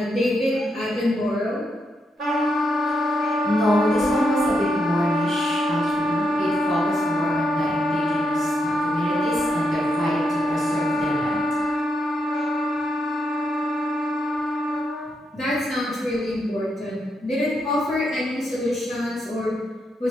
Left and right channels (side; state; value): both; normal; correlation 0.82